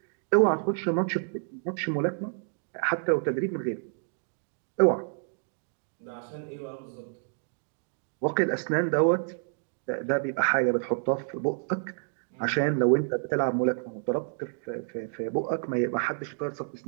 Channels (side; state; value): left; silent; digital silence